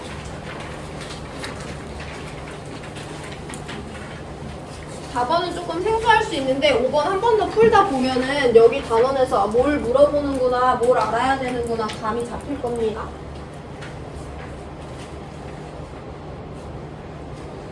조금 생소할 수 있는데 5번 한 번 더 풀다 보면은 여기 단원에서 뭘 물어보는구나, 뭘 알아야 되는구나 감이 잡힐 겁니다.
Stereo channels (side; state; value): both; identical; correlation 1.00